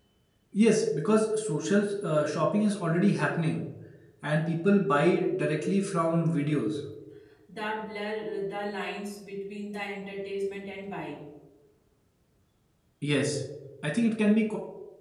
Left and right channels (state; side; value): identical; both; correlation 1.00